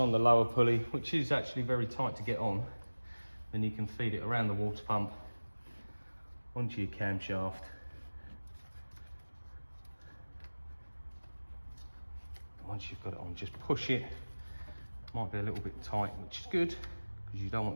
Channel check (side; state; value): both; inverted; correlation -1.00